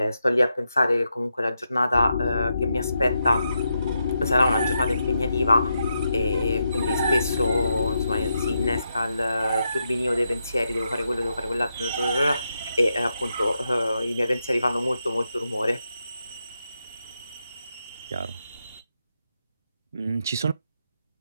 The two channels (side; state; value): both; inverted; correlation -0.84